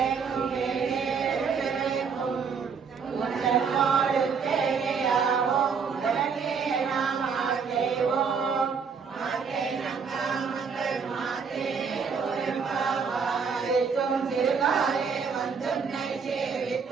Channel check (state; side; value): quieter; left; 5.9 dB